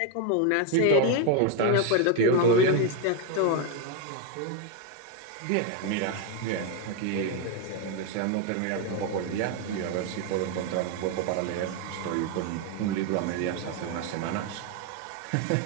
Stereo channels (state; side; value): different; both; correlation 0.02